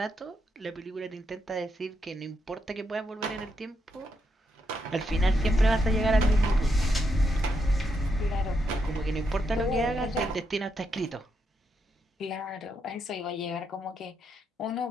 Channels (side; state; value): both; normal; correlation 0.81